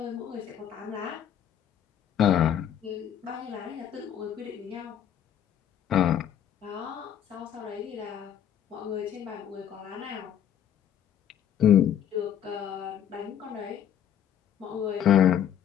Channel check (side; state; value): right; quieter; 9.6 dB